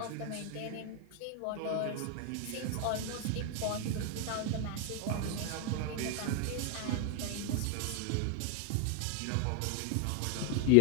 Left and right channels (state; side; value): different; both; correlation 0.01